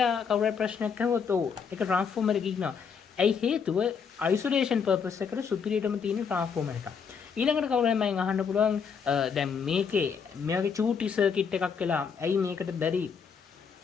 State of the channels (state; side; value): quieter; right; 6.3 dB